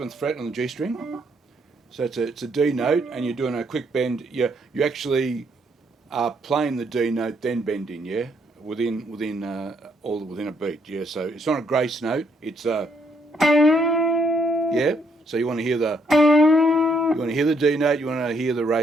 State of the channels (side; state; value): both; normal; correlation 0.72